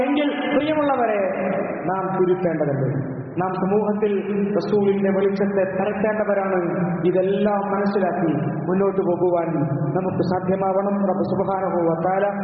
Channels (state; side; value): identical; both; correlation 1.00